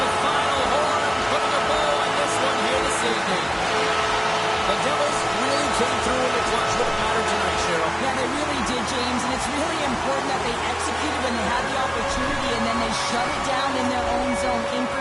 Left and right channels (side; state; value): both; identical; correlation 1.00